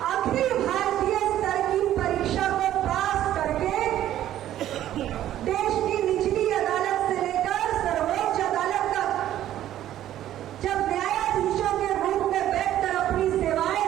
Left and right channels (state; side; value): quieter; left; 12.4 dB